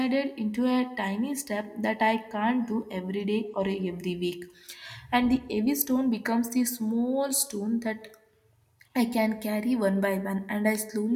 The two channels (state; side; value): identical; both; correlation 1.00